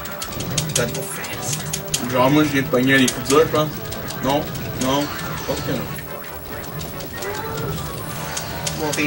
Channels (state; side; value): identical; both; correlation 1.00